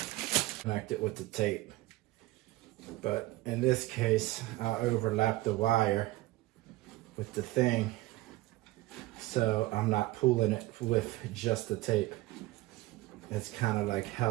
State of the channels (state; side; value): quieter; left; 18.5 dB